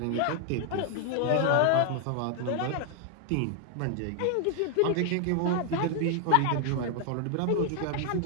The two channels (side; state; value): both; different; correlation 0.00